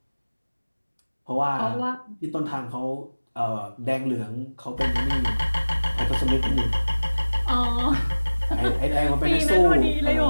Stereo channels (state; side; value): inverted; both; correlation -1.00